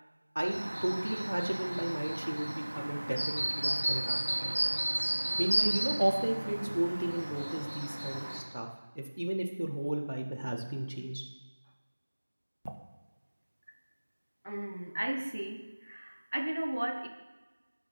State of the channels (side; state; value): both; inverted; correlation -1.00